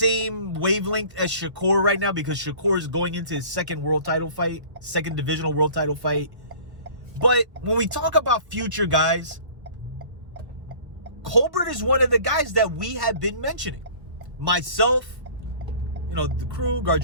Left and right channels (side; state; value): left; late; 1.5 ms